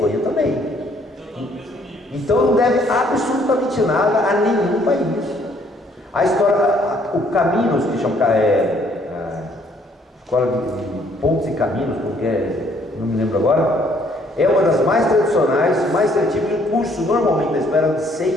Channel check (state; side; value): normal; both; correlation 0.64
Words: também. Então não deve absolutamente nada a nenhum país. A história, o Caminos, que chama Escola de Pontes e Caminhos, porque não me lembro agora, é uma das mais tradicionais, mais traditivas, e o curso normalmente da espera de